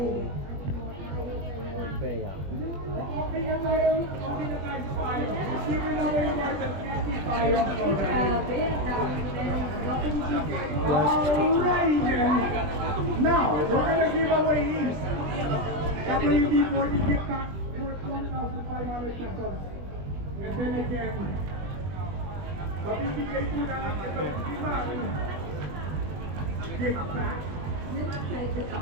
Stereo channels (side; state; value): left; late; 21 ms